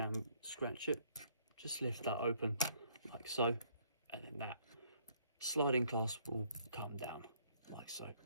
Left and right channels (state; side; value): inverted; both; correlation -0.65